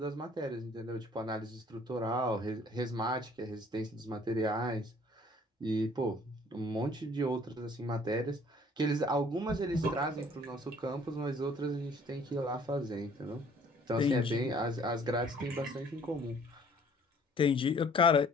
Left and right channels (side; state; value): both; normal; correlation 0.56